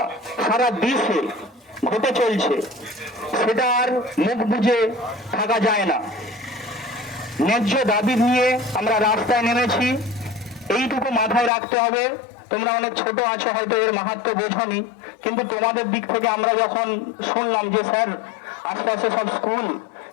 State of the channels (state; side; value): drops out; right; at 11.5 s